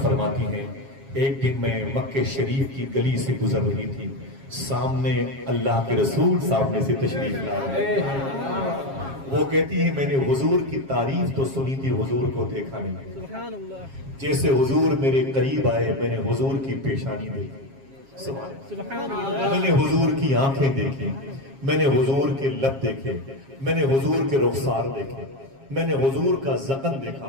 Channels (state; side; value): late; left; 7.4 ms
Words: فرماتی ہیں ایک دن میں مکہ شریف کی گلی سے گزر رہی تھی, سامنے اللہ کے رسول سامنے سے تشریف لا رہے. وہ کہتی ہے میں نے حضور کی تعریف تو سنی تھی, حضور کو دیکھا نہیں. جیسے حضور میرے قریب آئے میں نے حضور کی پیشانی دیکھی, میں نے حضور کی آنکھیں دیکھی, میں نے حضور کے لب دیکھے, میں نے حضور کے رخسار دیکھے, میں نے حضور کا ذقن